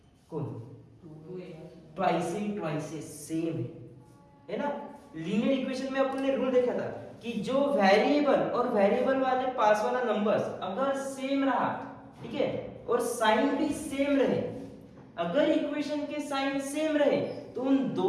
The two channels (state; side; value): identical; both; correlation 1.00